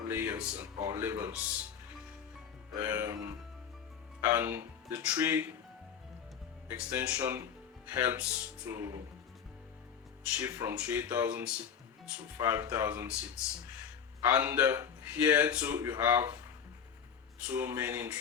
layers or levels, and the 3 extension helps to shift from 3,000 seats to 5,000 seats. And here too you have 2 main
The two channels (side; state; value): right; quieter; 7.6 dB